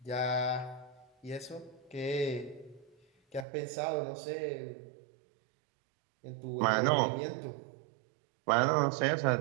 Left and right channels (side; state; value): left; drops out; at 3.5 s